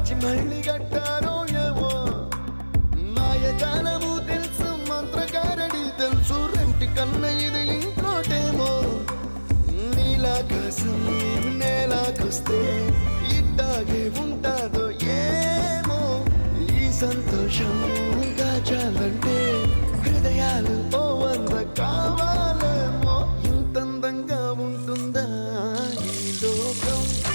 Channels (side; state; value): both; inverted; correlation -1.00